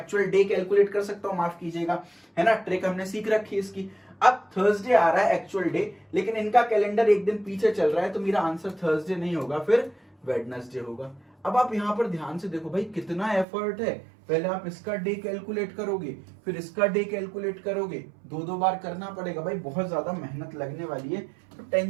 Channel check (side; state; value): left; drops out; at 13.5 s